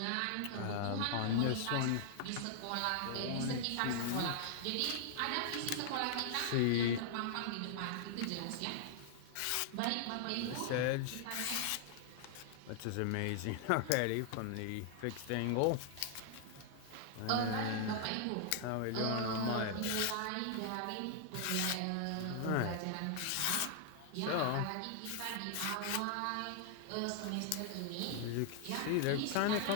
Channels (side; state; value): both; different; correlation -0.01